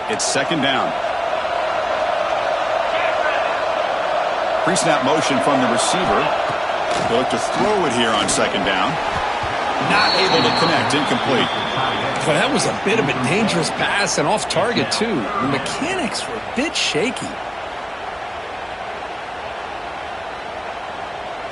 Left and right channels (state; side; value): identical; both; correlation 1.00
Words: It's second down. Pre-snap motion from the receiver. They'll look to throw it here on second down. Not able to connect. Incomplete. But that was a bit of a dangerous pass and off target, too. The mechanics were a bit shaky.